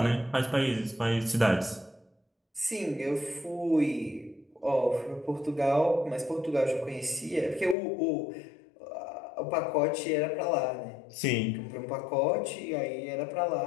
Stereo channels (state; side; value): drops out; right; at 7.8 s